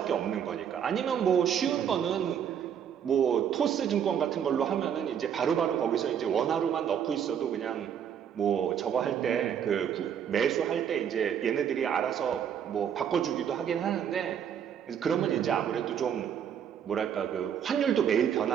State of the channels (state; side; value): quieter; left; 8.6 dB